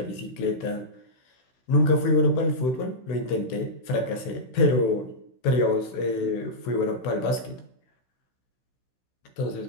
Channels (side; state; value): right; late; 16 ms